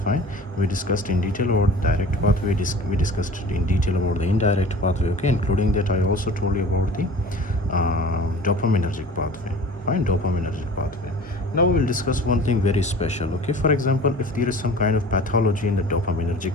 Fine. We discussed in detail about direct pathway. We discussed in detail about the indirect pathway. Okay, including that, I also told you about the dopaminergic pathway. Fine, dopaminergic pathway. Now we will discuss one thing very special. Okay, for example, if there is some kind of pathology in the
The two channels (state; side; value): normal; both; correlation 0.42